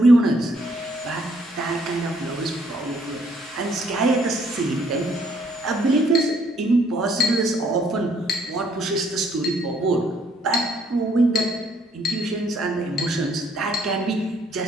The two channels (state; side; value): normal; both; correlation 0.66